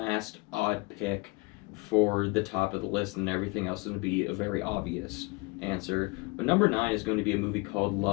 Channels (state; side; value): quieter; right; 26.5 dB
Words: odd pick for the top of the list, and everything else is going to be a very obvious answer. But number 9 is going to be a movie called